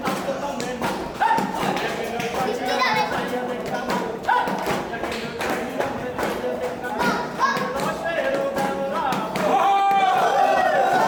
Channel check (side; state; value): both; identical; correlation 1.00